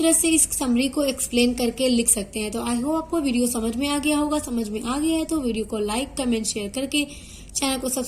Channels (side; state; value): both; identical; correlation 1.00